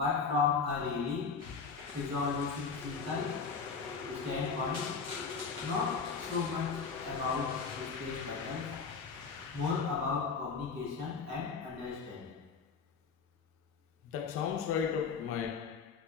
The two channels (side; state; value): right; quieter; 5.3 dB